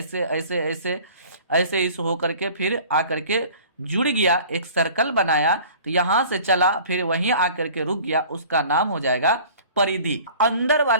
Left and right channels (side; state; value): both; inverted; correlation -0.46